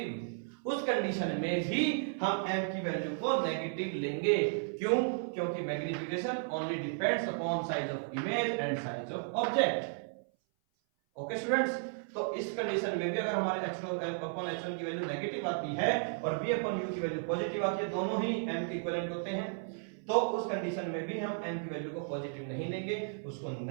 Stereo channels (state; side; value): silent; left; 55 dB below the other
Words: उस कंडीशन में भी हम m की वैल्यू को नेगेटिव लेंगे। क्यों? क्योंकि magnification only depends upon size of image and size of object. Okay students, तो इस कंडीशन में भी अगर हमारे h2 अपॉन h1 की वैल्यू नेगेटिव आती है और v अपॉन u की वैल्यू पॉजिटिव आती है, दोनों ही m के इक्विवेलेंट होते हैं, तो उस कंडीशन में भी हम m की वैल्यू को पॉजिटिव नहीं लेंगे, उसको